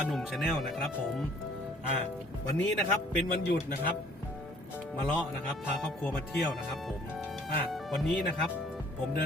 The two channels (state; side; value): normal; both; correlation 0.57